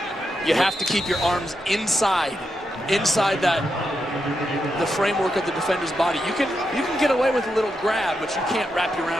You have to keep your arms inside the framework of the defender's body. You can get away with a little grab, but you can't wrap your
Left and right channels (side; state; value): both; normal; correlation 0.85